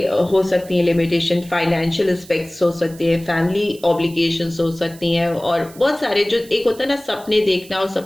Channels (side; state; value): right; noise; hiss, 21 dB below the sound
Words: हो सकती हैं लिमिटेशन, फाइनेंशियल एस्पेक्ट्स हो सकती हैं, फैमिली ऑब्लिगेशंस हो सकती हैं, और बहुत सारे, जो एक होता है ना सपने देखना और